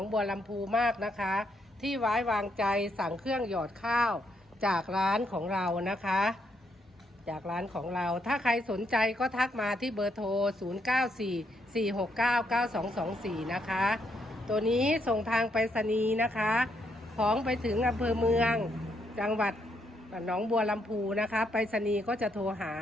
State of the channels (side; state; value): both; normal; correlation 0.76